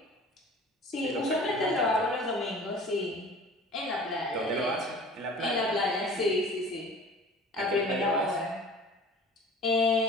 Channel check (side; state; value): both; normal; correlation 0.44